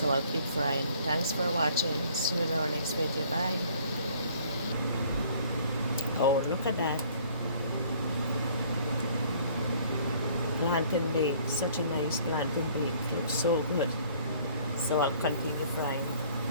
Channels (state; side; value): inverted; both; correlation -0.57